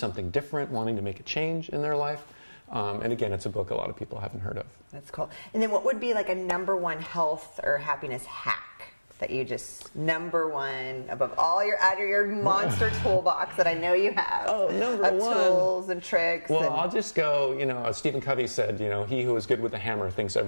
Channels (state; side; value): inverted; both; correlation -1.00